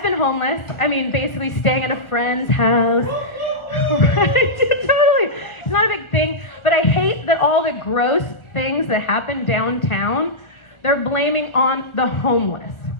been homeless. I mean, basically staying at a friend's house. Right? Totally. It's not a big thing, but I hate that all the gross things that happen downtown, they're blaming on the homeless.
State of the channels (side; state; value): right; late; 1.4 ms